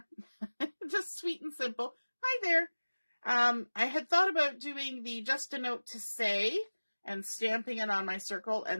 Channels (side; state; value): both; inverted; correlation -1.00